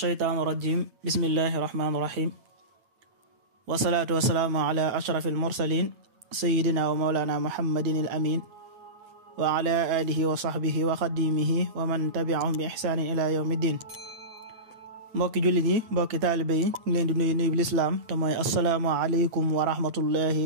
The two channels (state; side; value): late; left; 8.6 ms